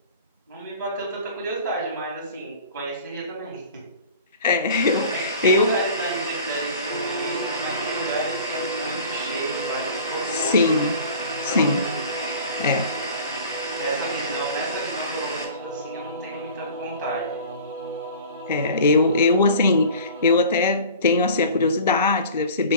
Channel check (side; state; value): both; inverted; correlation -0.43